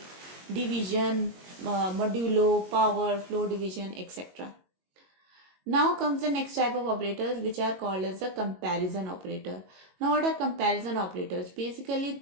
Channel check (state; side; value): late; left; 22 ms